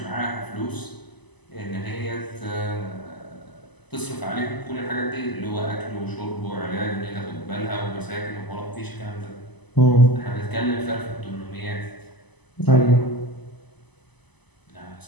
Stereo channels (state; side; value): late; right; 0.99 ms